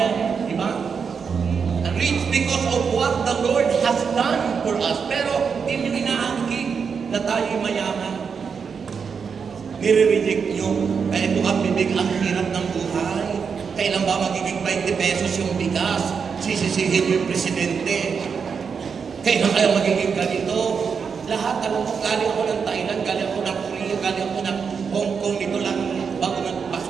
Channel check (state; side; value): quieter; left; 6.1 dB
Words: diba? Rich because of what the Lord has done for us. Pero hindi nyo inaangkin na tayo mayaman. Nire-reject nyo. Kaya ito ang bibig, ang hirap ng buhay. Kailan ba magiging 20 pesos yung bigas? Sisisihin nyo yung presidente. Kailan kaya magiging ganito? Lahat, alam mo, galing ako ng Thailand, galing ako ng Korea, galing ako ng Hong Kong, dito lang bago ng